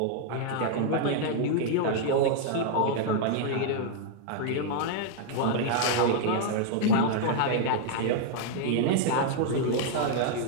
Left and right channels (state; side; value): different; both; correlation 0.00